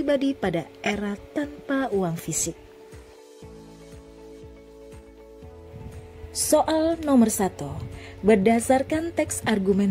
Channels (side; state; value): both; identical; correlation 1.00